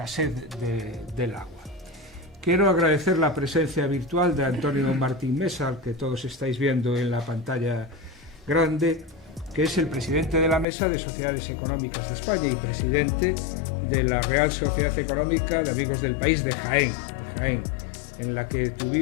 del agua. Quiero agradecer la presencia virtual de Antonio Martín Mesa, al que todos estáis viendo en la pantalla grande, que es el presidente de la Mesa de Sociedades Económicas de España y presidente de la Real Sociedad Económica de Amigos del País de Jaén, en la que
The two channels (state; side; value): drops out; right; at 10.7 s